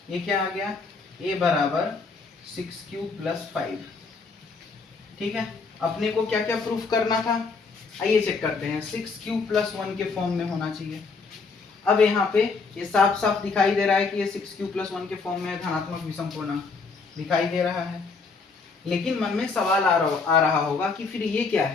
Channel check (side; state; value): right; quieter; 4.5 dB